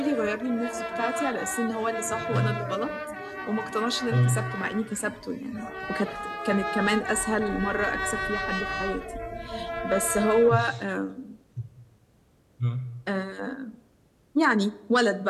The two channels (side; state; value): both; identical; correlation 1.00